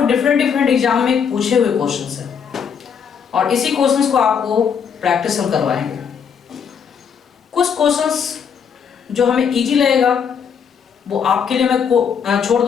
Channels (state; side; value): quieter; right; 7.0 dB